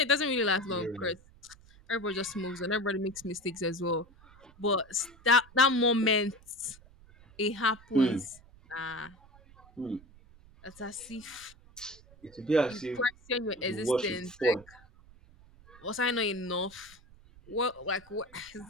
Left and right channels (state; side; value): noise; right; rumble, 24 dB below the sound